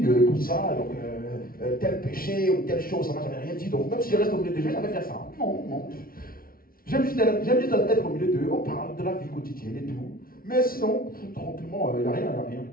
Tout ça, donc, tel péché ou telle chose, ça ne m'a jamais rien dit. Donc, même si je reste au milieu de Dieu, je vais faire ça. Non. J'aime juste être au milieu d'eux, on parle de la vie quotidienne et tout. Mais sinon, tranquillement, il n'y a rien.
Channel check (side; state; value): right; late; 0.43 ms